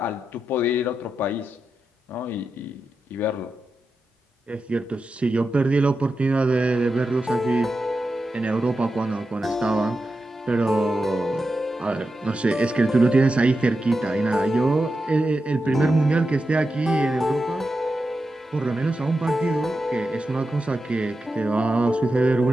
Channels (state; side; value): normal; both; correlation 0.89